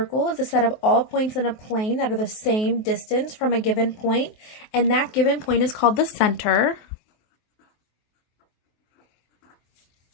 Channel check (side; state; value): right; late; 23 ms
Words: is a set of all points in a plane that are the same distance from a given point, and that given point is called the center.